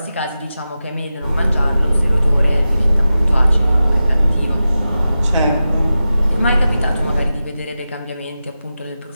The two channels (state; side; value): inverted; both; correlation -0.92